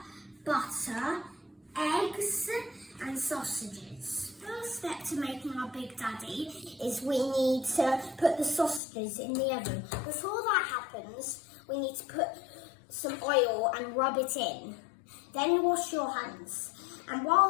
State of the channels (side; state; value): right; drops out; at 8.8 s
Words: butter, eggs and sausages. First step to making our Big Daddy is we need to put the sausages in the oven. Before that happens, we need to put some oil and rub it in. Then wash your hands. And